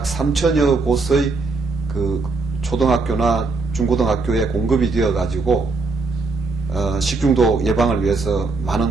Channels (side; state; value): left; quieter; 3.8 dB